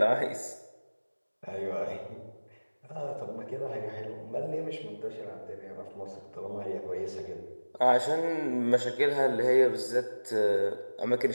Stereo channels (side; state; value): both; inverted; correlation -1.00